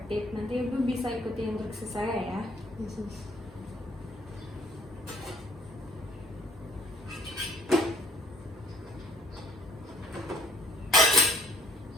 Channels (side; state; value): both; normal; correlation 0.61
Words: Nanti Ibu bisa ikuti instruksi saya ya.